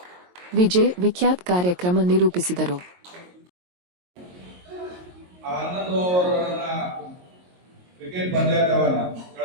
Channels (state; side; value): late; left; 22 ms